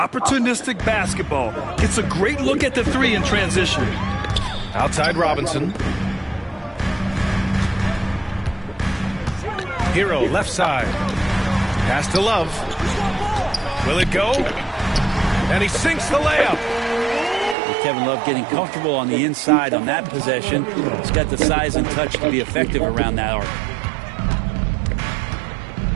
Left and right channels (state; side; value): drops out; left; at 17.6 s